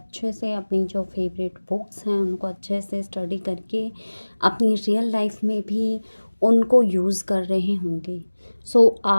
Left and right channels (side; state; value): both; inverted; correlation -1.00